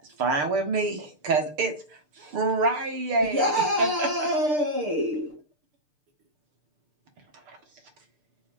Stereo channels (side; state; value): left; late; 6.7 ms